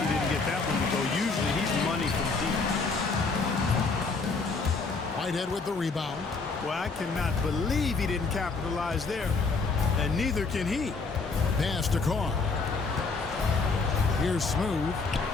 he didn't get that one to go. Usually he's money from deep. Whitehead with the rebound. Well, I cannot believe he didn't capitalize there. And neither can he. Pass to Carr. Here's Smooth.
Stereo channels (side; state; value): right; quieter; 4.2 dB